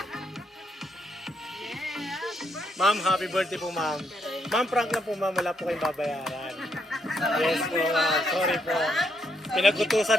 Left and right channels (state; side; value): normal; both; correlation 0.76